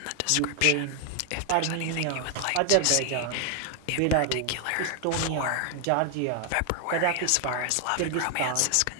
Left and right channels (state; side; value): different; both; correlation 0.00